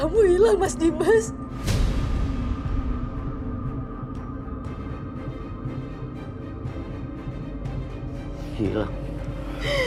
hilang, Mas Dimas. Hilang?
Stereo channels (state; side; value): identical; both; correlation 1.00